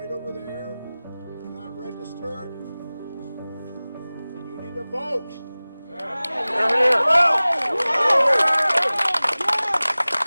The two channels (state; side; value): inverted; both; correlation -0.99